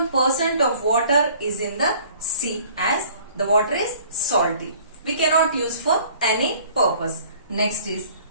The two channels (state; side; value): inverted; both; correlation -0.53